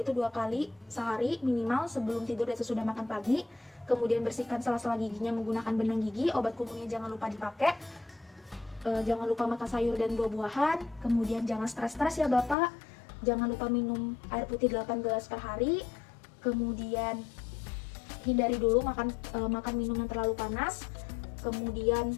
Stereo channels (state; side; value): drops out; right; at 12.6 s